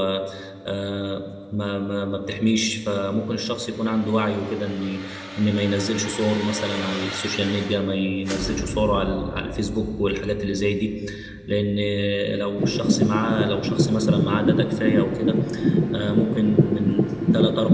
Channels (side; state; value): both; identical; correlation 1.00